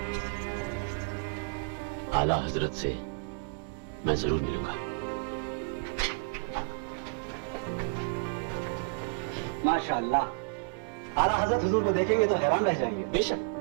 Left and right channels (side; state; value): left; quieter; 36.7 dB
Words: आला हजरत से मैं जरूर मिलूंगा। माशाअल्लाह, आला हजरत हुजूर को देखेंगे तो हैरान रह जाएंगे। बेशक